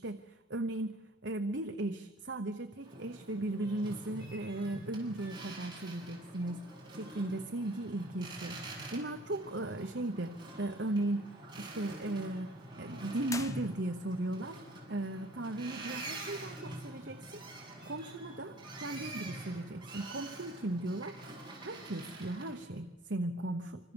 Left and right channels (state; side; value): normal; both; correlation 0.52